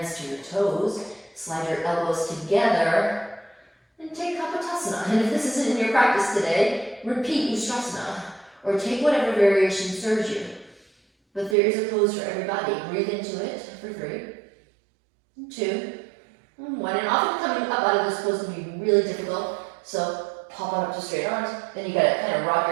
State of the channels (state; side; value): drops out; left; at 11.6 s